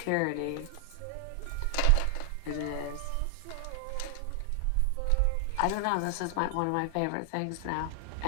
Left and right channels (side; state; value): both; different; correlation 0.00